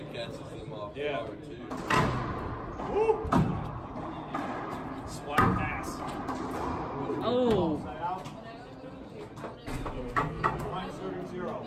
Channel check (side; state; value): both; identical; correlation 1.00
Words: catches them off Yeah. guard too. Woo! Splash pass. Oh. Side out. Point serving 0.